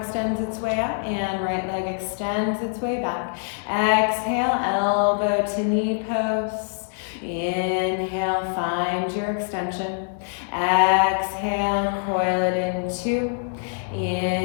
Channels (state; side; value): silent; right; digital silence